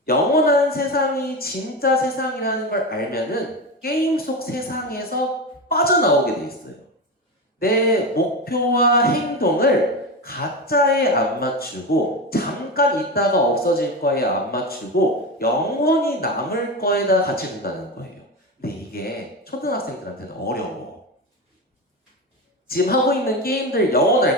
영원한 세상이 진짜 세상이라는 걸 알면은 게임 속 세상에서 빠져나오게 돼 있어요. 내 목표와 행동을 가짜에 안 맞추고 잠깐 있다가 없어질 거에 안 맞추고 영원히 남을 거에다 같이 둔다는 거예요. 근데 이게 초등학생들한테는 어려워. 지금 하고 있는 게임들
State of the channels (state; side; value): normal; both; correlation 0.20